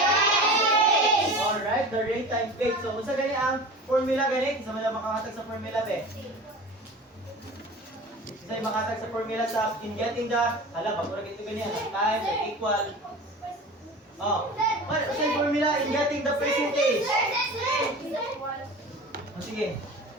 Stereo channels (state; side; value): normal; both; correlation 0.36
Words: Alright, the rate times base. So, kung sa ganyan ang formula ganit, isa mo lang makakatag sa formula be. Isa yung makatag sa formula sa in getting the, pagkurag ito ganyan, time equal. Oh, what is yung formula in getting the percentage? Oh, sige.